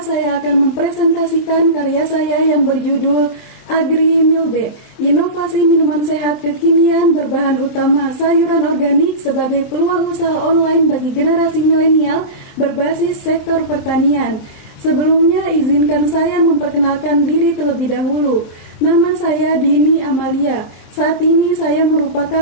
akan mempresentasikan karya saya yang berjudul Agri Milde, inovasi minuman sehat kekinian berbahan utama sayuran organik sebagai peluang usaha online bagi generasi milenial berbasis sektor pertanian. Sebelumnya izinkan saya memperkenalkan diri terlebih dahulu. Nama saya Dini Amalia. Saat ini saya merupakan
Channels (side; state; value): right; late; 24 ms